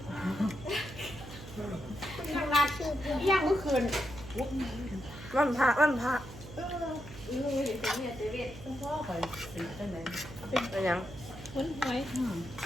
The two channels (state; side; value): noise; right; hum, 14 dB below the sound